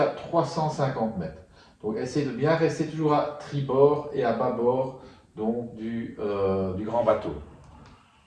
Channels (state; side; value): identical; both; correlation 1.00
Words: 350 mètres. Donc essayez de bien rester toujours à tribord et à bâbord donc, du grand bateau.